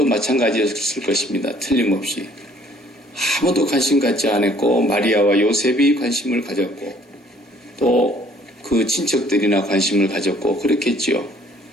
마찬가지였을 것입니다. 틀림없이. 아무도 관심 갖지 않았고 마리아와 요셉이 관심을 가졌고 또 그 친척들이나 관심을 가졌고 그렇겠지요.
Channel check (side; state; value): both; normal; correlation 0.60